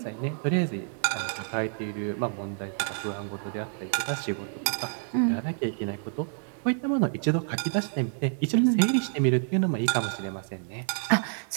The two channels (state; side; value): silent; left; 57 dB below the other